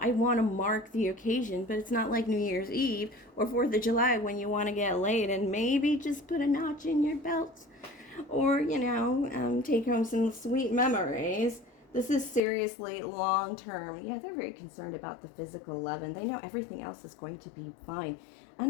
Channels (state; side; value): drops out; right; at 12.4 s